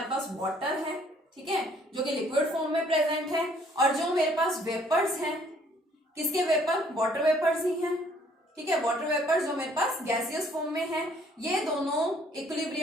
पास वाटर है, ठीक है, जो कि लिक्विड फॉर्म में प्रेजेंट है, और जो मेरे पास वेपर्स हैं, किसके वेपर, वाटर वेपर्स ही हैं, ठीक है। वाटर वेपर्स जो मेरे पास गैसियस फॉर्म में है, ये दोनों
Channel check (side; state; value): both; normal; correlation 0.61